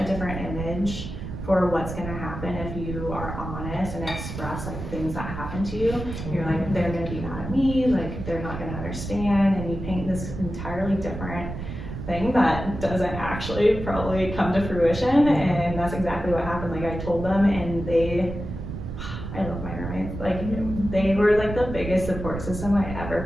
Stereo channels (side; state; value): right; noise; rumble, 8 dB below the sound